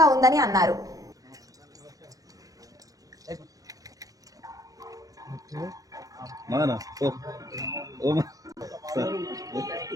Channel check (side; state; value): left; late; 0.17 ms